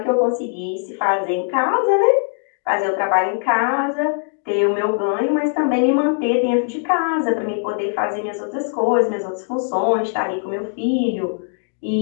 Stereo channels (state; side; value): silent; right; 61 dB below the other